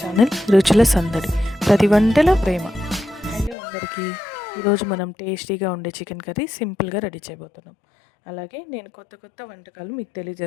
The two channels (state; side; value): drops out; right; at 3.6 s